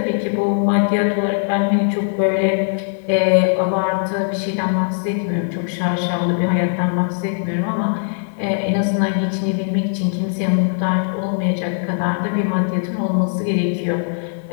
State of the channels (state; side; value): silent; right; digital silence